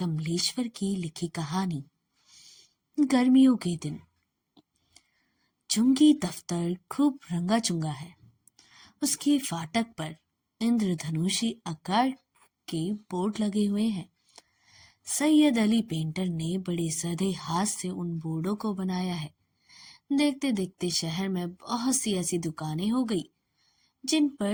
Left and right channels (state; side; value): identical; both; correlation 1.00